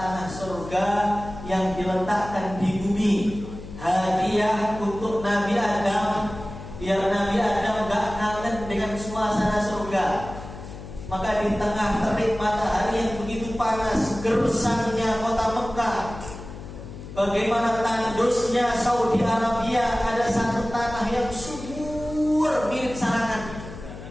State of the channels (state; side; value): noise; left; hum, 13 dB below the sound